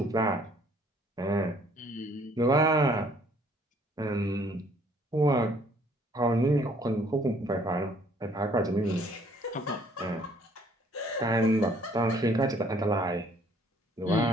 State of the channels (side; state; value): both; normal; correlation 0.61